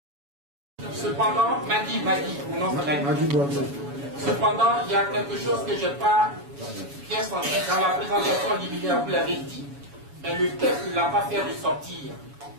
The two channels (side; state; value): left; late; 7.1 ms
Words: Cependant, cependant, il y a quelque chose que je n'ai pas bien senti dans la présentation liminaire, vous l'avez dit, mais le texte ne l'a pas fait ressortir.